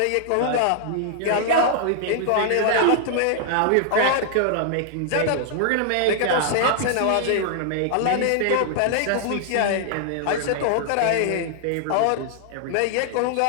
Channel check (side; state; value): both; different; correlation -0.01